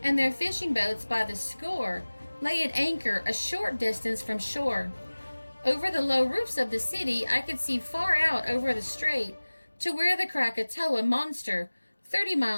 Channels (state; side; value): inverted; both; correlation -1.00